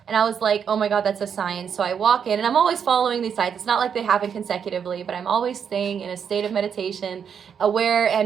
And I was like, oh my God, that's a sign. So I walk in, and I'm always following these signs. It's not like they happen consecutively, but I'm always staying in a state of meditation, aware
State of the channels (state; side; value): quieter; left; 7.4 dB